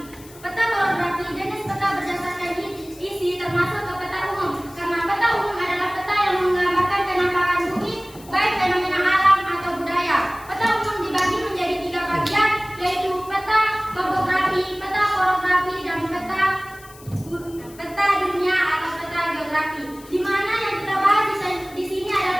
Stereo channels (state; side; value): noise; left; hiss, 21 dB below the sound